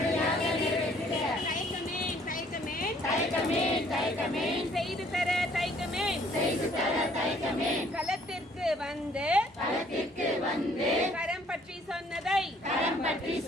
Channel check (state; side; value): normal; both; correlation 0.61